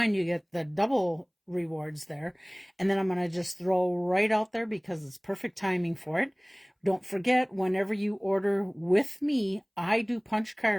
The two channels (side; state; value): both; identical; correlation 1.00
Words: you get the double rewards there. And then I'm going to just throw right out there, because it's perfect timing for it. Don't forget, whenever you order with me, I do punch